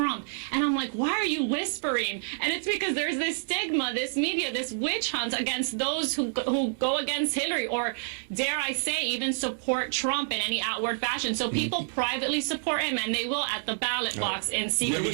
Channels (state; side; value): silent; left; digital silence